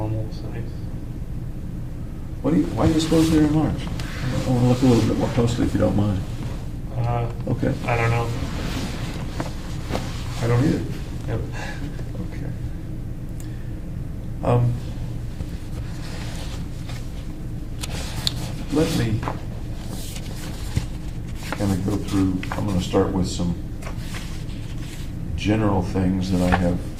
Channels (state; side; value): identical; both; correlation 1.00